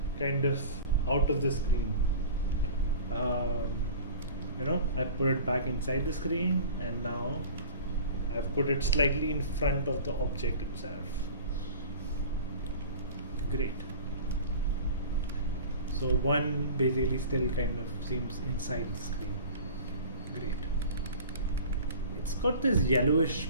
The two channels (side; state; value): both; inverted; correlation -0.39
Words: kind of out of the screen. You know, I put it back inside the screen, and now I've put it slightly in front of the object itself. Great. So one basically still kind of seems inside the screen. Great. It's got this yellowish